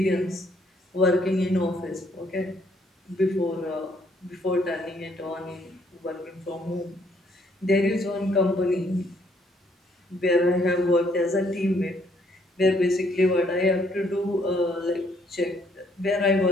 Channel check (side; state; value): both; normal; correlation 0.68